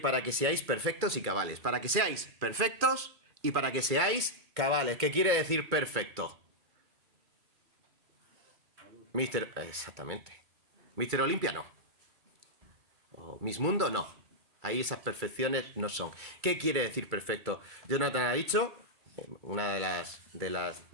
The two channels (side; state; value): left; late; 2.2 ms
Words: que seáis perfectos y cabales. Para que seáis perfectos y para que seáis cabales. ¿Qué quiere decir perfecto? Exactamente. Mister Olimpia no. O Miss Mundo no. Ahí esas perfecciones no son. ¿Qué quiere decir perfecto? Jonathan ha dicho, una de las